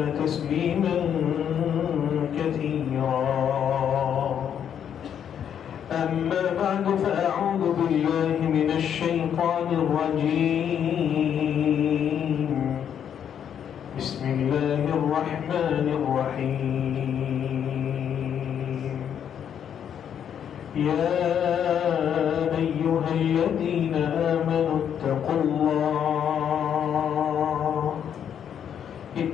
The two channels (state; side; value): quieter; right; 8.8 dB